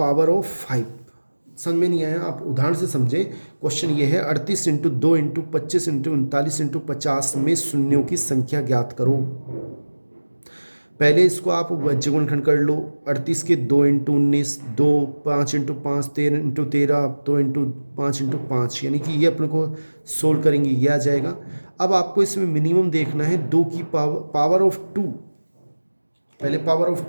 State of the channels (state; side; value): inverted; both; correlation -1.00